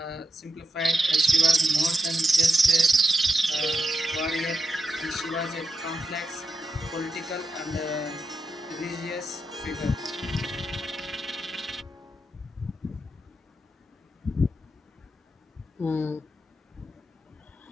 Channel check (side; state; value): both; normal; correlation 0.85